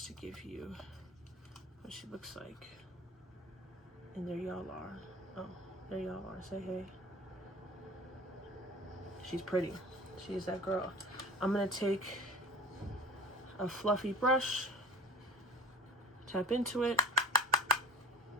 to give you what she looks like. And there y'all are. Oh, there y'all are. Say hey. She's pretty. She's that girl. I'm gonna take a fluffy brush, tap into it,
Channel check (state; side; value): normal; both; correlation 0.39